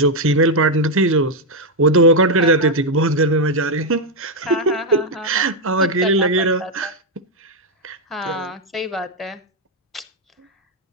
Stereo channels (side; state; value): both; normal; correlation 0.02